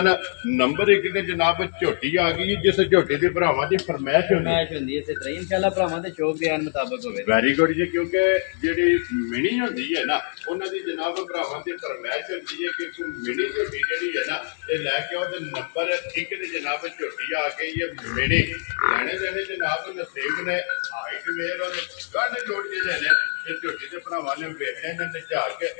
नंबर 1 ते जनाब झोटी आ गई जिस झोटी की भरावां की फरमाइश होंदी है इंशाअल्लाह भरावां दे शौक बयान मुताबिक होवे। वेरी गुड जी, क्योंकि जिहड़ी मिनी होंदी है ना उन्हां दी जनाब भरावां की फरमाइश होंदी है कि मिनी झोटी जिहड़ी है ना ये लैके आओ। नंबर 1 ते जनाब झोटी आ गई है मिनी। लैने देने जनाब नसीब ने हाइट मेर और गंढ जोड़ जिहड़े ने झोटी के भरावां ने वेखने ने निझा के।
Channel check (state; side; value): silent; right; 62 dB below the other